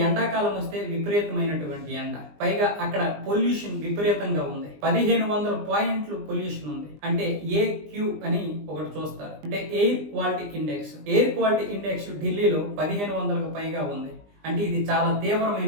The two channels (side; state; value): left; late; 20 ms